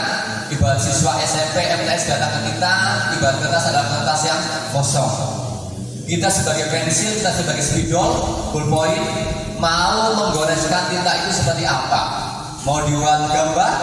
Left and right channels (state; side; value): identical; both; correlation 1.00